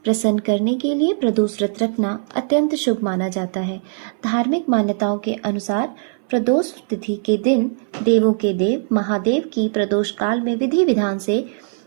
प्रसन्न करने के लिए प्रदोष व्रत रखना अत्यंत शुभ माना जाता है। धार्मिक मान्यताओं के अनुसार प्रदोष तिथि के दिन देवों के देव महादेव की प्रदोष काल में विधि विधान से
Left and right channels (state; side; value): silent; left; 62 dB below the other